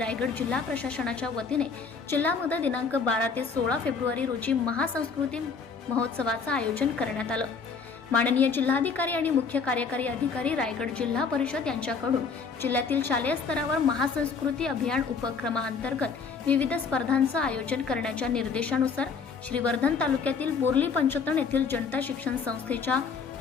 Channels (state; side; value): quieter; right; 5.3 dB